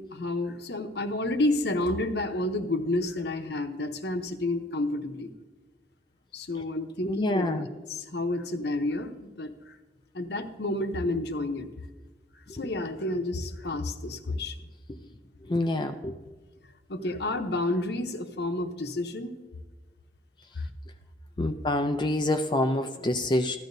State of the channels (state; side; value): normal; both; correlation 0.55